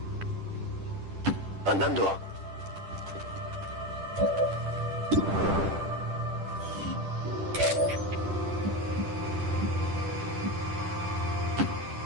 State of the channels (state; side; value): late; left; 10 ms